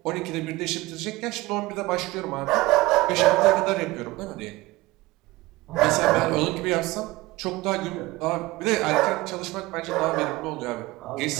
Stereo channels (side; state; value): left; quieter; 19.8 dB